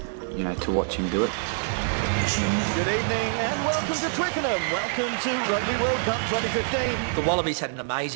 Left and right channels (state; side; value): silent; left; digital silence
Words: to watch him do it. Good evening and welcome to Twickenham. Welcome to Rugby World Cup 2015. The Wallabies had an